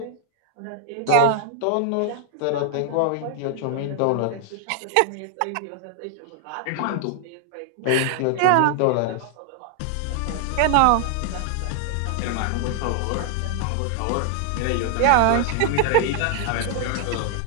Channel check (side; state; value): both; different; correlation 0.00